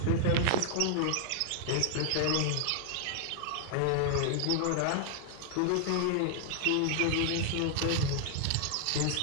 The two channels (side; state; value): both; different; correlation 0.00